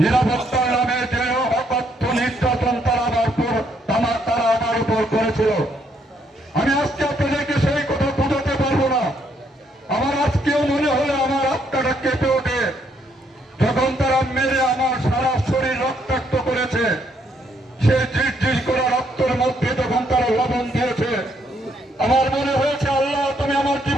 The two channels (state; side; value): normal; both; correlation 0.72